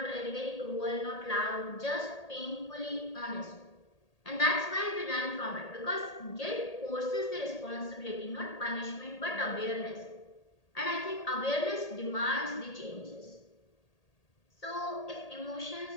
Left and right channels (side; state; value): right; late; 1.8 ms